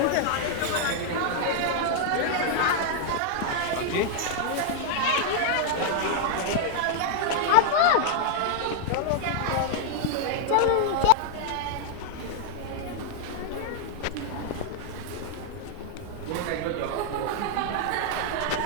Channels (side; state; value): both; different; correlation 0.00